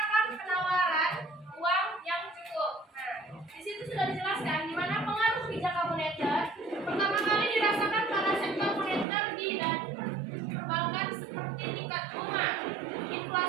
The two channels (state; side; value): drops out; left; at 9.1 s